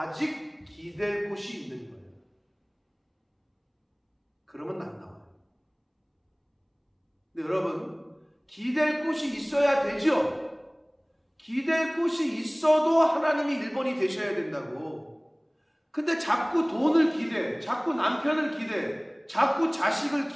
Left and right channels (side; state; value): both; identical; correlation 1.00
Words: 기댈 곳이 있는 거예요. 그러면 안 나와요. 근데 여러분, 기댈 곳이 있어야 되죠? 기댈 곳이 있어도 하나님이 1번이 되셔야 된다고. 근데 자꾸 돈을 기대, 자꾸 남편을 기대, 자꾸 자식을